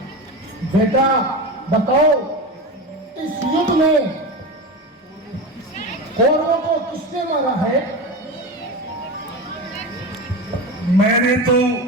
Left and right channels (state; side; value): normal; both; correlation 0.24